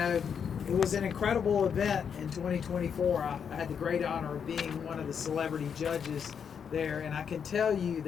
it was an incredible event in 2024. I had the great honor of being one of the celebrity judges there, and I can tell you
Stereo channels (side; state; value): right; quieter; 7.2 dB